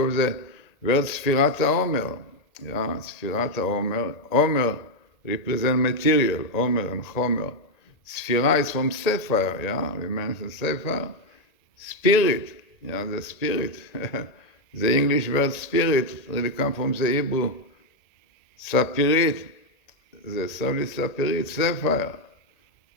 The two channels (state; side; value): late; right; 1.8 ms